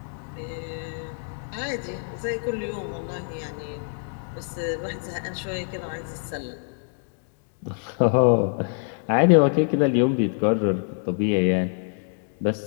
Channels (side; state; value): right; silent; 61 dB below the other